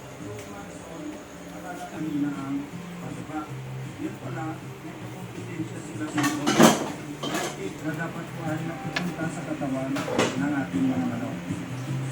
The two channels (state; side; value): identical; both; correlation 1.00